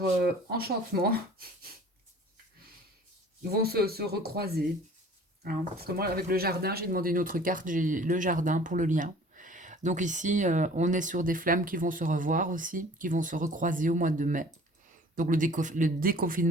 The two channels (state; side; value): normal; both; correlation 0.48